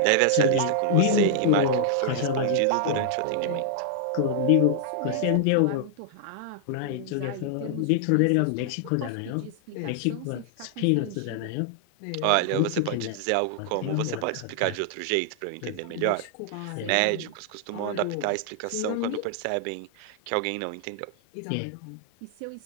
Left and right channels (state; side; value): different; both; correlation -0.01